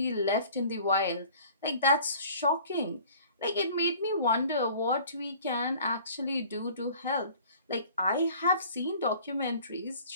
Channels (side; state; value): both; inverted; correlation -0.48